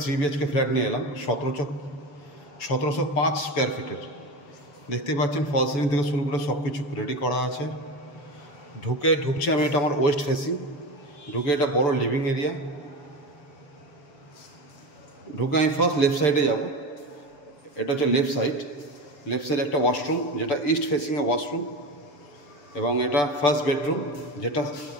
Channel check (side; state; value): right; late; 7.1 ms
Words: 3 BHK ফ্ল্যাট নিয়ে এলাম, 1705 স্কোয়ার ফিটের। দেখতেই পাচ্ছেন ফল সিলিং থেকে শুরু করে সব কিছু রেডি করা আছে। ঢুকছি আমি, এটা আমার ওয়েস্ট ফেসিং। ঢুকে এটা বড় লিভিং এরিয়া। ঢুকে আমি ফার্স্ট লেফট সাইডে যাব। এটা হচ্ছে লেফট সাইড একটা ওয়াশরুম, যেটা ইস্ট ফেসিংয়ে ওয়াশরুম, এবং এটা ফার্স্ট বেডরুম, যেটা